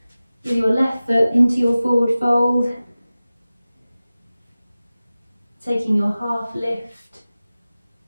with your left foot into your forward fold, taking your half lift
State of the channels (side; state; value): both; inverted; correlation -0.96